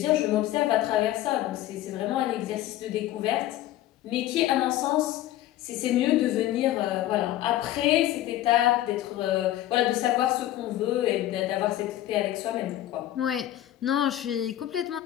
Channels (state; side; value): quieter; right; 13.9 dB